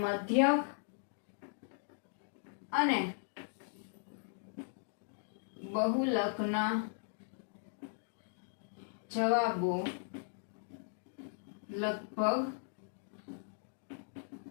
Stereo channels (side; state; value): right; silent; digital silence